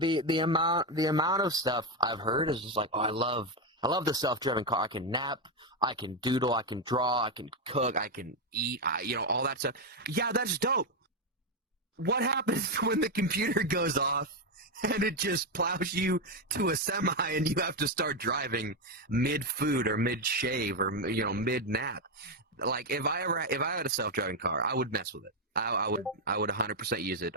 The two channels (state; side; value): normal; both; correlation 0.06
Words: amount of stuff I've heard is just like, oh, I love the self-driving car. I can nap, I can doodle, I can draw, I can cook, I can eat, all that stuff. Yeah, that's dope. What happens when the computer goes off and it just plows you to a semi and you have to start driving mid-food or mid-shave or mid-nap? Like if I had a self-driving car, I would mess with it. I would 100% use it.